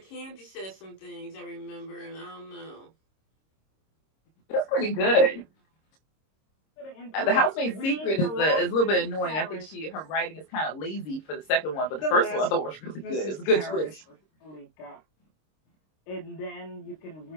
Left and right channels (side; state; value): right; late; 26 ms